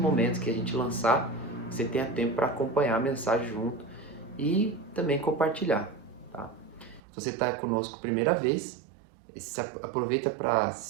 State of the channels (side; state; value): left; drops out; at 7.0 s